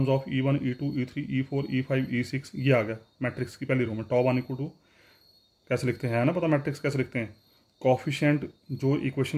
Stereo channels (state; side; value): identical; both; correlation 1.00